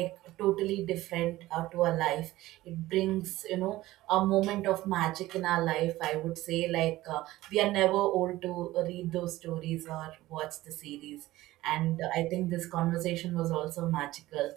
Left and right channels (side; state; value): left; quieter; 16.9 dB